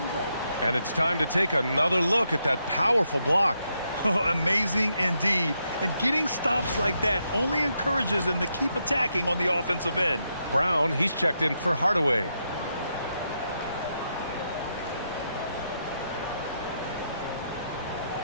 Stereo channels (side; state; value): both; inverted; correlation -0.81